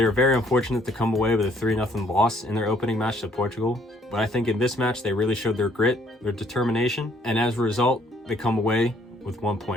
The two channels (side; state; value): both; normal; correlation 0.64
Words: were very unfortunate to come away with a 3-0 loss in their opening match to Portugal. But I think in this match, they really showed their grit, their determination, and as a result, they come away with 1